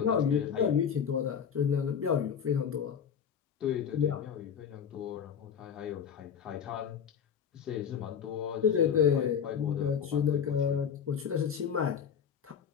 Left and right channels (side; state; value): right; quieter; 7.7 dB